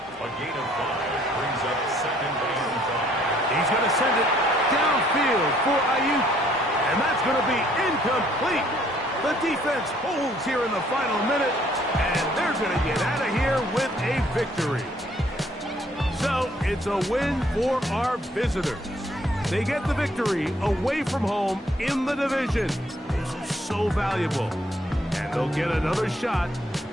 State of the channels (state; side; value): normal; both; correlation 0.64